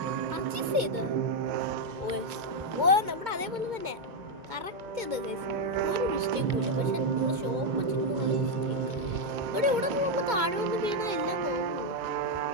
പർച്ചേസ് ചെയ്ത്. ഓ നമ്മുടെ അതേപോലെ തന്നെ കറക്റ്റ് ഇത് ഗൈസ്. ഒരു മിസ്റ്റേക്കും ഇല്ല. പക്ഷെ നമ്മൾ ഷോപ്പ് വെച്ചിട്ട് ഇവിടെ പോകുമ്പോൾ താഴെ വന്ന് വീണ എല്ലാം പോകും.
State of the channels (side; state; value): left; late; 2.2 ms